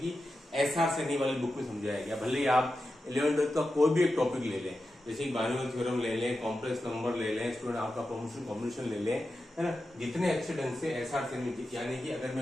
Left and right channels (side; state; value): both; normal; correlation 0.91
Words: कि एसआर सैनी वाली बुक में समझाया गया। भले ही आप 11-12 का कोई भी एक टॉपिक ले लें, जैसे बाइनोमियल थ्योरम ले लें, कॉम्प्लेक्स नंबर ले लें, स्टूडेंट आपका प्रमोशन कॉम्बिनेशन ले लें, है ना, जितने अच्छे ढंग से एसआर सैनी, यानी कि अगर